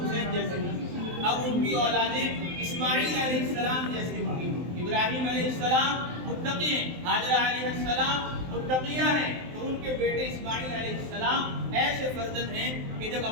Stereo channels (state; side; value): late; left; 23 ms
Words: جیسے ہوں گی، اب ان کی اولادیں اسماعیل علیہ السلام جیسے ہوں گی. ابراہیم علیہ السلام متقی ہیں، حاجرہ علیہ السلام متقیہ ہیں، تو ان کے بیٹے اسماعیل علیہ السلام ایسے فرزند ہیں کہ جب